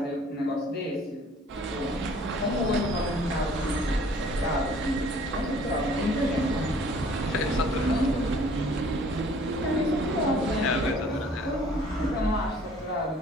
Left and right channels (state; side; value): normal; both; correlation 0.55